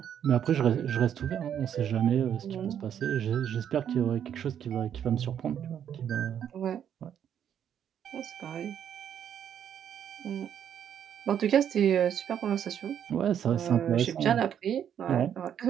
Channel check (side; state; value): left; quieter; 9.2 dB